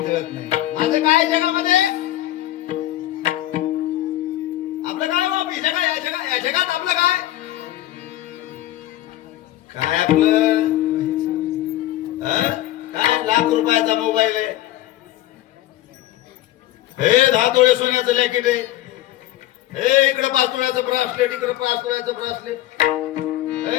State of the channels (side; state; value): right; quieter; 14.8 dB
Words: काय जगात आपलं काय काय आपलं काय लाख रुपयाचा मोबाईल आहे, हे 10 तोळे सोन्याचं लॅकेट आहे, हे इकडे 5 तोळ्याचं ब्रासलेट, इकडे 5 तोळ्याचं ब्रासलेट.